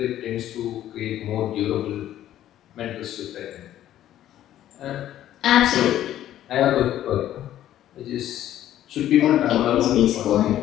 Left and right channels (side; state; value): right; quieter; 12.3 dB